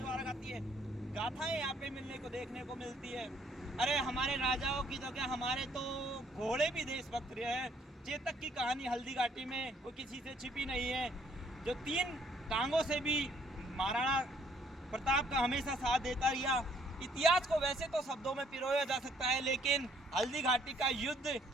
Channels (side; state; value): both; normal; correlation 0.64